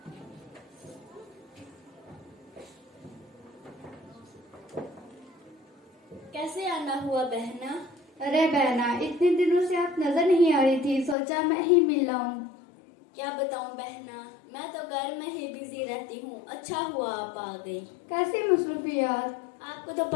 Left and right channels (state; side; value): drops out; right; at 11.2 s